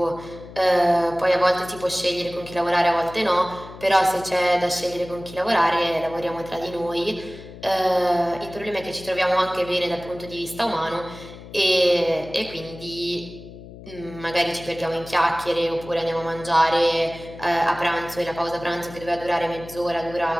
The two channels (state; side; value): noise; left; hum, 16 dB below the sound